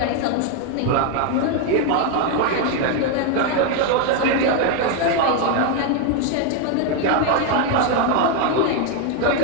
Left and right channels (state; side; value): different; both; correlation 0.01